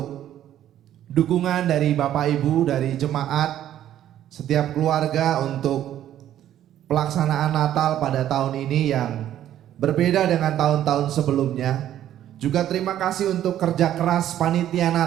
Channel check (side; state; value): left; quieter; 11.6 dB